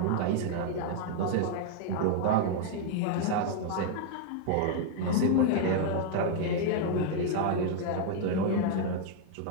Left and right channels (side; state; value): both; different; correlation 0.00